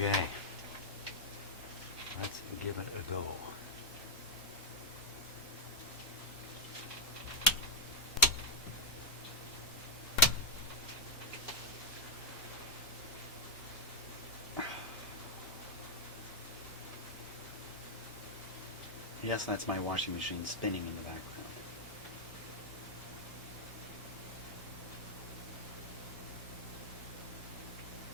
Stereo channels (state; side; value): normal; both; correlation -0.05